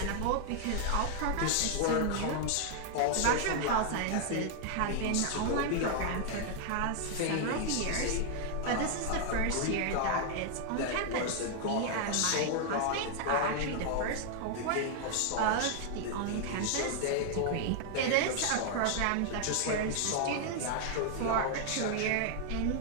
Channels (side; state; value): both; different; correlation 0.00